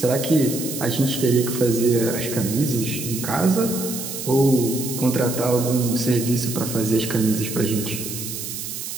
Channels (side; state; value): right; noise; hiss, 7 dB below the sound